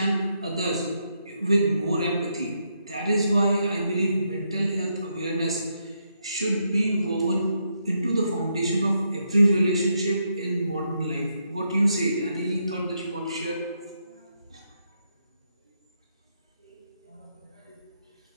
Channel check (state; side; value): inverted; both; correlation -0.79